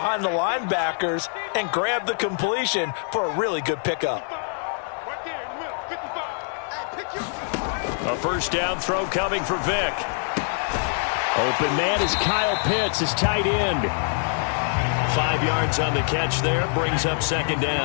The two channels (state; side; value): silent; right; 59 dB below the other